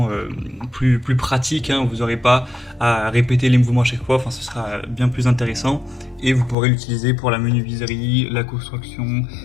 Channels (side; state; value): right; drops out; at 6.6 s